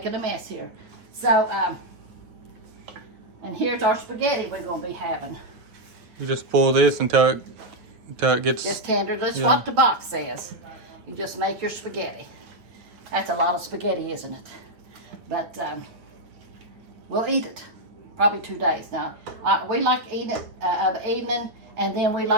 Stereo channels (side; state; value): left; late; 9.3 ms